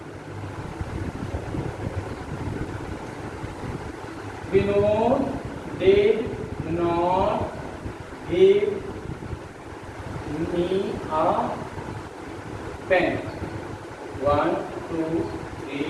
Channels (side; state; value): both; identical; correlation 1.00